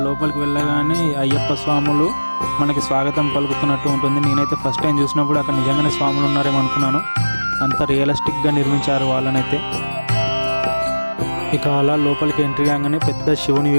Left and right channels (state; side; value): inverted; both; correlation -1.00